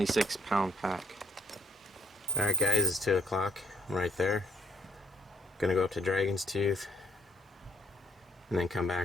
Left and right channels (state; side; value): normal; both; correlation 0.65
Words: pound pack. Alright guys, it's 2 o'clock. I'm right there. Gonna go up to Dragon's Tooth and then come